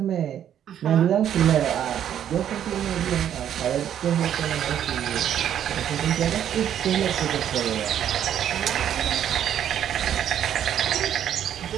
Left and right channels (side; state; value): left; quieter; 10.0 dB